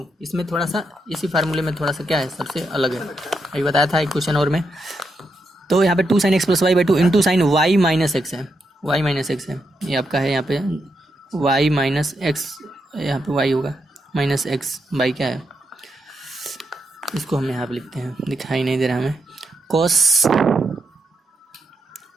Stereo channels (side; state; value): both; normal; correlation 0.82